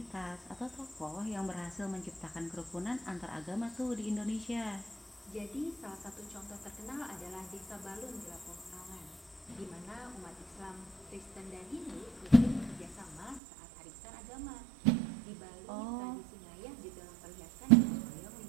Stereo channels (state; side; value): drops out; left; at 13.4 s